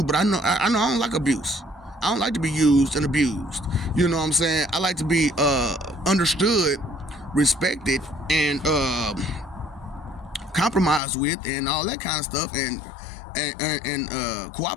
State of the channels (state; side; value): drops out; right; at 11.0 s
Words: but I know I don't like abuse. I don't like to be used and abused. You know what I'm saying? I like to be understood, respected, and compromised with, and all that kind of stuff, and